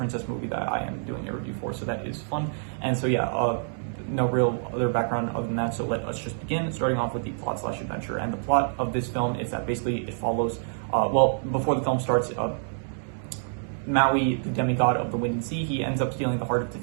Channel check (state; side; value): silent; left; digital silence